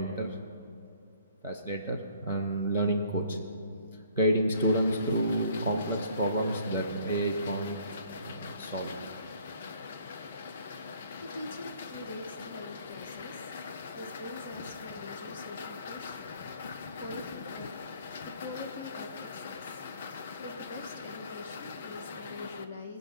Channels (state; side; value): inverted; both; correlation -0.58